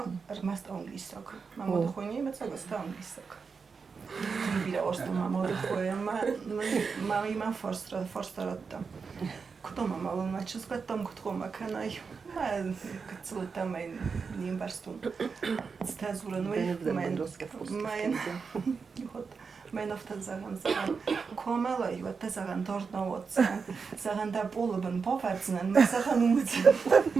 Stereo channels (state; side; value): quieter; left; 5.3 dB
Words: رمست انگلیساک ما ماده خوانی مثلا است انگلیساک بیره آستم ما ماده خوانی من فارس دارم کدام مالون ما چیز کدام کدام کنای ما کتلتم این نیم برستون استازورن من افتاد زغن کاملایی و تزغن دارد نوادزن زغن در بولبن باورزنن من زغن اومدن